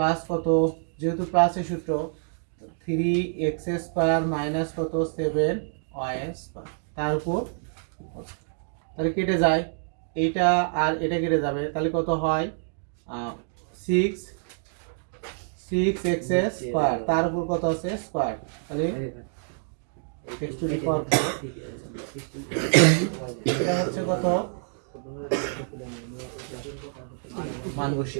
কত, যেহেতু প্লাসের সূত্র 3x স্কয়ার মাইনাস কত 7y স্কয়ার তার উপর, তাহলে কেটে যায় এইটা আর এটা কেটে যাবে, তাহলে কত হয় 6x স্কয়ার তার উপর কত আছে স্কয়ার, তাহলে x টু দি পাওয়ার 4 এটা হচ্ছে কত মান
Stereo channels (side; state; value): left; silent; digital silence